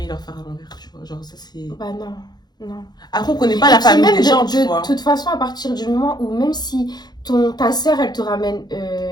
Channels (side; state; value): right; late; 0.20 ms